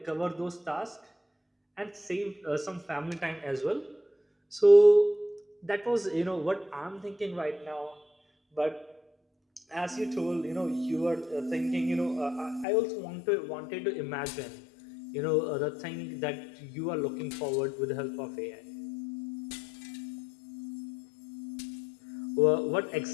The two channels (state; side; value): drops out; right; at 12.7 s